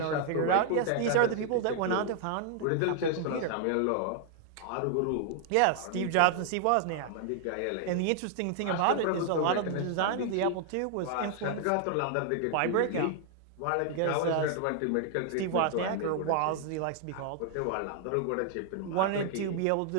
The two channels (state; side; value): different; both; correlation 0.00